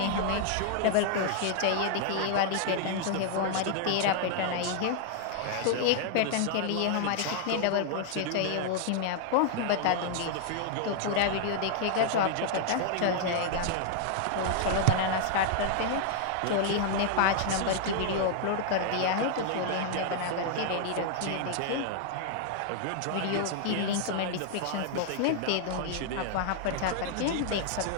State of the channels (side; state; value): both; different; correlation -0.01